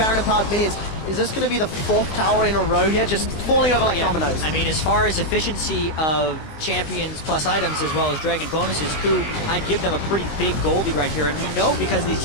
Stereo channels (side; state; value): right; late; 20 ms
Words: minions. Is this going to be the 4th tower in a row here, just falling over like dominoes? I mean, as far as efficiency of champions plus items as well as dragon bonuses, KOO, I'd give them a pretty big gold lead right here. And we know because of these